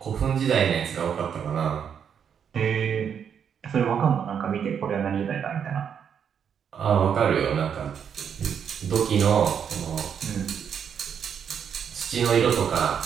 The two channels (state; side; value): quieter; left; 7.8 dB